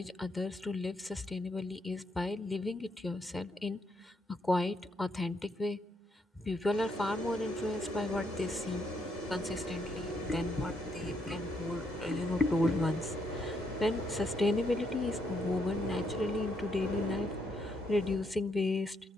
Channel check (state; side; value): normal; both; correlation 0.75